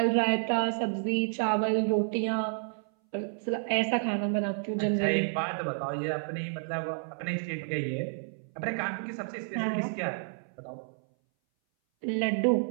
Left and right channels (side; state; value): left; silent; 58 dB below the other